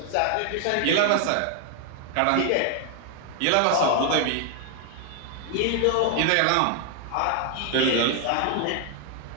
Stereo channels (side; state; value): both; different; correlation 0.00